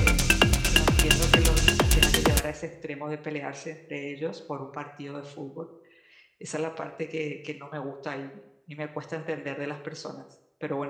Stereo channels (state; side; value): identical; both; correlation 1.00